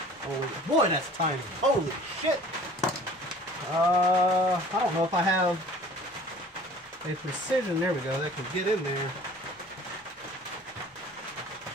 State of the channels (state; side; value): normal; both; correlation 0.48